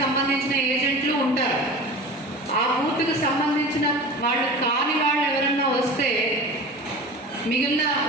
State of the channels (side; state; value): both; normal; correlation 0.34